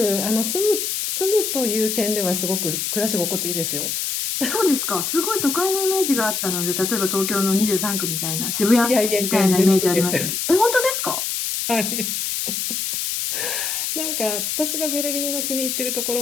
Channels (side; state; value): left; noise; hiss, 1 dB below the sound